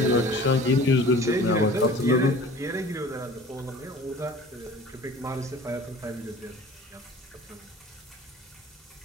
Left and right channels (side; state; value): both; normal; correlation 0.44